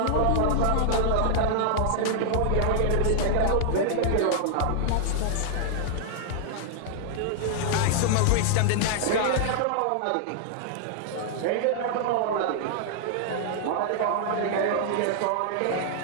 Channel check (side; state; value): both; different; correlation -0.01